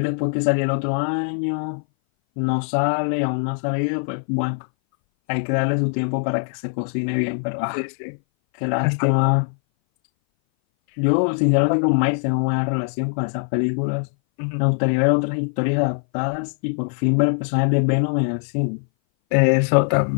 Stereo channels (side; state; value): right; silent; 59 dB below the other